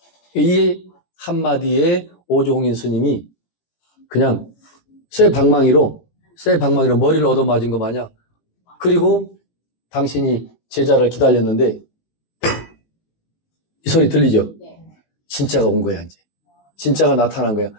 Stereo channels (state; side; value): late; right; 18 ms